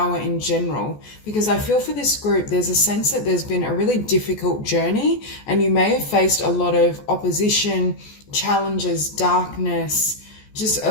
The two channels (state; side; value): late; right; 14 ms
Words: in general. Because I feel for this group, there's a sense that there's been a really difficult journey and you may have faced a lot of opposition, challenges, darkness, just